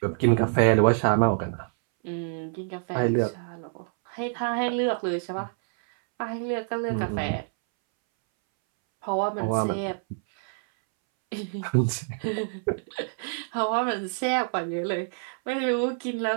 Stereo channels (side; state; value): left; silent; 60 dB below the other